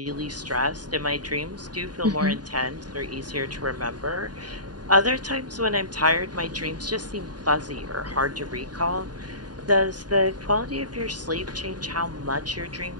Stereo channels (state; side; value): late; left; 0.69 ms